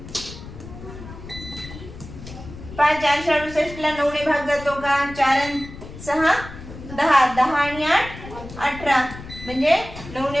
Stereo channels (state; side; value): noise; left; rumble, 14 dB below the sound